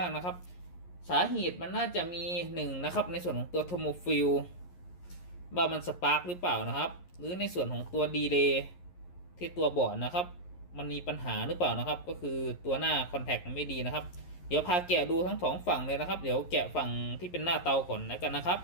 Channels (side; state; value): right; late; 11 ms